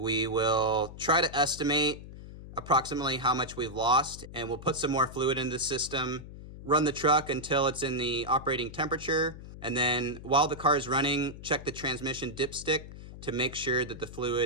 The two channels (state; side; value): noise; left; hum, 14 dB below the sound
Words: will try to estimate approximately how much we've lost, and we'll put some more fluid in the system, run the truck until it's in the operating temperature, and then while the car is running, check the transmission dipstick to make sure that the